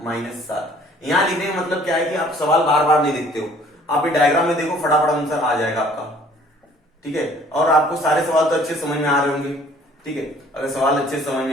-7। यहाँ लिखने का मतलब क्या है कि आप सवाल बार बार नहीं लिखते हो, आप ये डायग्राम में देखो, फटाफट आंसर आ जाएगा आपका। ठीक है, और आपको सारे सवाल तो अच्छे समझ में आ रहे होंगे। ठीक है, अगर सवाल अच्छे समझ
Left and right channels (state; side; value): normal; both; correlation 0.56